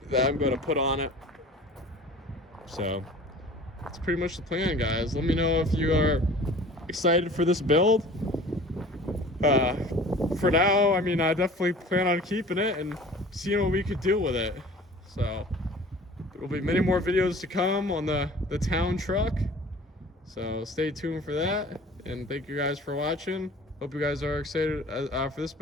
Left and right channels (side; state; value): both; normal; correlation 0.44